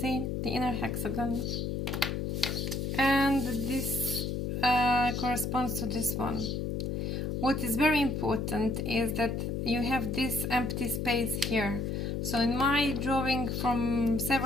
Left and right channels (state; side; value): noise; left; hum, 1 dB below the sound